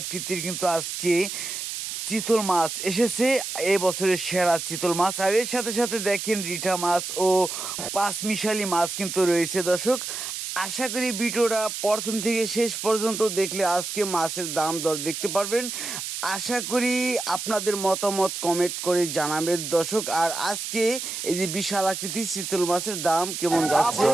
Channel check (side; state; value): right; noise; hiss, 5 dB below the sound